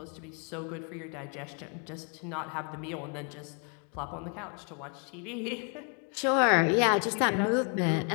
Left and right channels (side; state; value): right; quieter; 39.7 dB